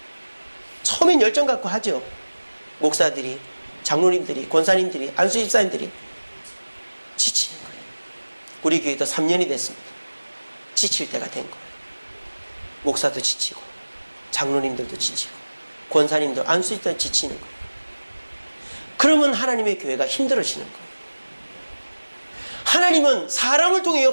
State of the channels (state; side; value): inverted; both; correlation -1.00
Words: 처음엔 열정 갖고 하죠. 목사들이, 장로님들이, 권사님들이, 안수집사님들이 지치는 거예요. 우리 교회도 3년이 됐습니다. 지칠 때가 된 거예요. 목사도 지치고 장로님들도 지치고 권사님들, 안수집사도 지치는 거예요. 그러면 하나님의 교회가 힘들어지는 거예요. 하나님은 사람을 통해